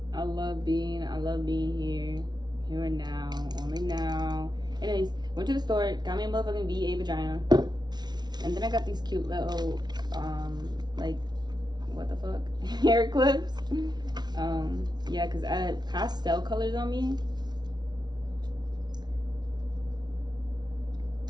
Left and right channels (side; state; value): left; late; 0.20 ms